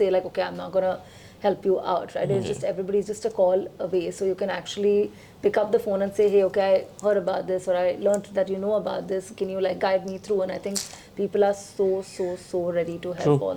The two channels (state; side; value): identical; both; correlation 1.00